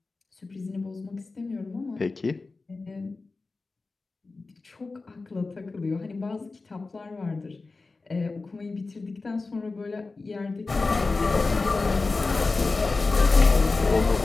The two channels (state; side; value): quieter; right; 3.7 dB